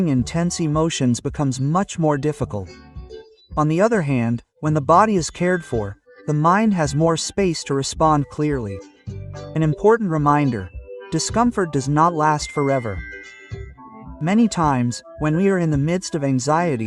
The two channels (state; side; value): identical; both; correlation 1.00